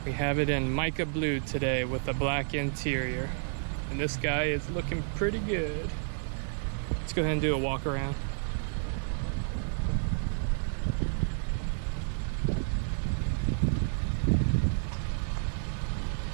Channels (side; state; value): left; silent; 57 dB below the other